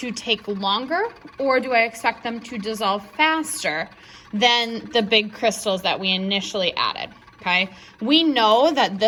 take longer, or do I expect them to dissolve faster than the big crystals that we initially added? Okay, we know that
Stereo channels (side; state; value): both; identical; correlation 1.00